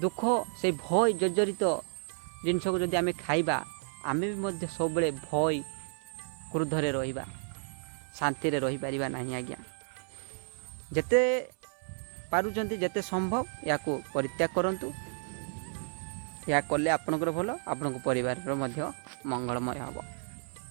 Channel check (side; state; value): left; silent; 56 dB below the other